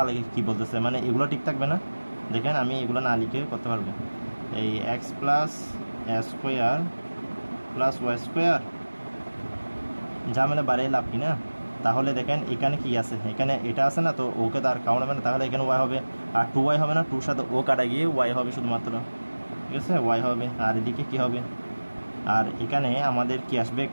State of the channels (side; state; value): both; inverted; correlation -1.00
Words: আলাদা কী বলতেছে, মানে এগুলো ঠিক থাকবে না, দেখেন আমি এগুলো না লিখে করতে পারবো, এই এক্স প্লাস এ স্কোয়ার প্লাস ওয়াই স্কোয়ার, ঝামেলা বাড়িয়ে লাভ কি না, তাহলে দেখেন এখানে কি আছে, এখানে এটা আছে না, তো ওকে তো আর কাউন্ট হবে না, তাহলে এখানে ওয়াই হবে, আর 2y হবে না, 2 সাথে ও কাটা গিয়ে ওয়াই হবে শুধুমাত্র, ঠিক আছে, ওয়াই হবে, আর এদিকে কি হবে, আর এখানে আমাদের কি আসবে